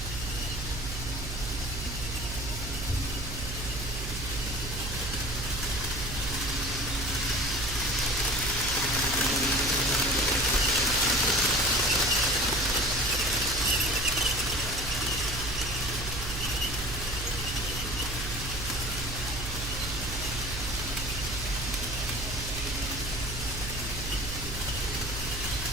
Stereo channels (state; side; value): noise; right; hum, 7 dB below the sound